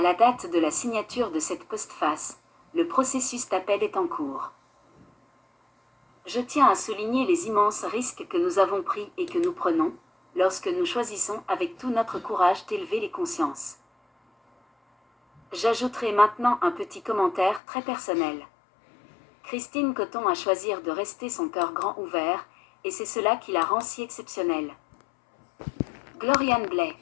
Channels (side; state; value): right; drops out; at 17.6 s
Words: date de la signature de cette postface, le processus d'appel est en cours. Je tiens à souligner les immenses risques que nous avons pris et que nous prenons, lorsque nous choisissons avec tout notre courage d'élever les consciences. J'ajouterai maintenant un petit commentaire très personnel. Christine Coton a choisi de rester son cœur grand ouvert, et c'est cela qui la rend si exceptionnelle. Gloriane Blais.